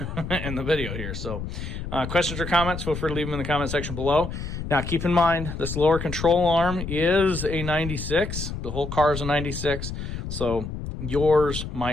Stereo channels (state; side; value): noise; left; rumble, 6 dB below the sound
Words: in the video here. So questions or comments, feel free to leave them in the comment section below. Now, keep in mind, this lower control arm is a 96. The whole car is a 96. So yours